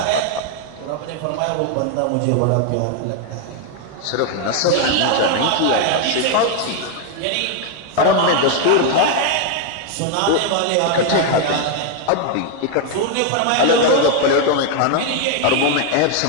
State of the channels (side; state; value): both; different; correlation 0.00